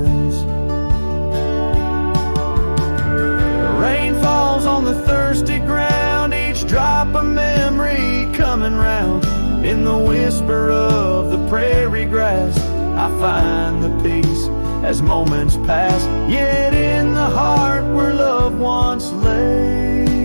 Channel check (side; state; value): both; inverted; correlation -1.00